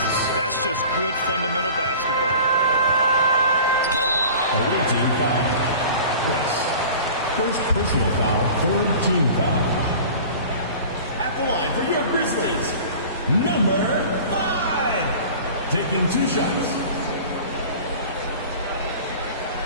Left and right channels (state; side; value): inverted; both; correlation -0.41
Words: That's just good fundamental basketball. Away team foul. Rice. First personal foul, third team foul. At the line for your Grizzlies, number 5. Taking 2 shots.